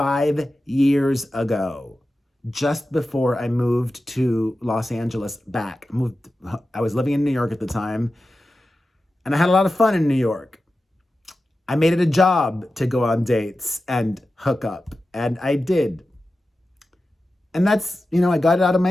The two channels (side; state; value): both; normal; correlation 0.93